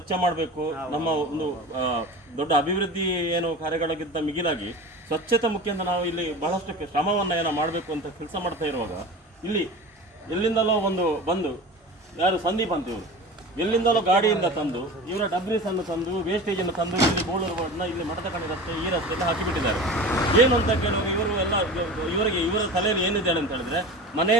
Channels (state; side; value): normal; both; correlation 0.33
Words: ಮಾಡಬೇಕು. ನಮ್ಮ ಒಂದು ದೊಡ್ಡ ಅಭಿವೃದ್ಧಿ ಏನು ಕಾರ್ಯಗಳಿಗಿಂತ ಮಿಗಿಲಾಗಿ ಸ್ವಚ್ಛತೆ ಮುಖ್ಯ ಅಂತ ನಾವು ಇಲ್ಲಿ ಬಹಳಷ್ಟು ಶ್ರಮವನ್ನು ಏನೋ ಮಾಡಬೇಕು ಅಂತ ಕೆಲಸ ಮಾಡ್ತಾ ಇರುವಾಗ ಇಲ್ಲಿ ಎಲ್ಲಿಂದಲೋ ಬಂದು ಯಾರು ಸಂದೀಪ್ ಅಂತ ಇವರು ಎಲ್ಲಿಂದಲೋ ಗಾಡಿಯಿಂದ ತಂದು ಇವರ ಡಬ್ರೀಸನ್ನು ತಂದು ವೇಸ್ಟೇಜನ್ನು ತಂದು ಇಲ್ಲಿ ಬೋಳೂರು ರೋಡ್ನ ಇಲ್ಲಿ ಮಠದಕಣಿ ರಸ್ತೆ ಈ ರಸ್ತೆಯಲ್ಲಿ ಹಾಕಿಬಿಟ್ಟಿದ್ದಾರೆ. ಏನು ಅಂತ ಕೇಳುವಾಗ ಇವರು ಎಲ್ಲ ಇವರ ತಲೆಯಲ್ಲಿ ಏನಿದೆ ಅಂತ ಹೇಳಿದ್ರೆ